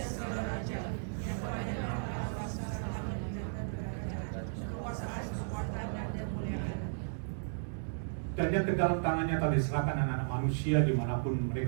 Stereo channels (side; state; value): left; silent; digital silence